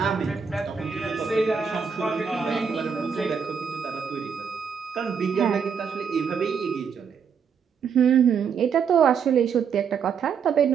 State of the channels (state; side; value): quieter; left; 6.6 dB